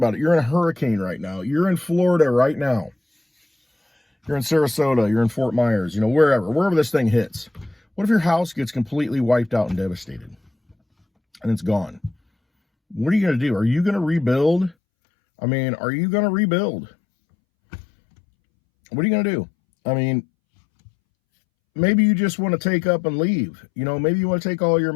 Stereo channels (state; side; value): drops out; right; at 14.8 s